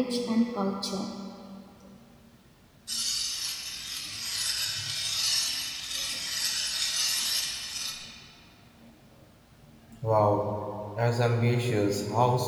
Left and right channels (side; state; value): both; identical; correlation 1.00